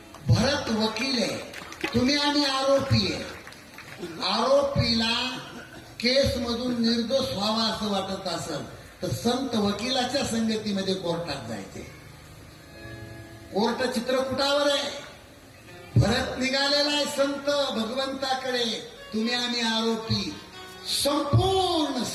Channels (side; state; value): both; identical; correlation 1.00